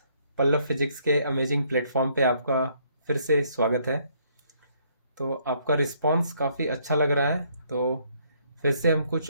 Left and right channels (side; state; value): both; inverted; correlation -0.67